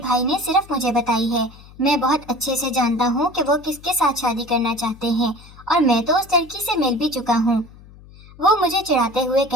نے صرف مجھے بتائی ہے۔ میں بہت اچھے سے جانتا ہوں کہ وہ کس کے ساتھ شادی کرنا چاہتے ہیں، اور میں تو اس لڑکی سے مل بھی چکا ہوں۔ وہ مجھے چڑھاتے ہوئے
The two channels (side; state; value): left; noise; hum, 21 dB below the sound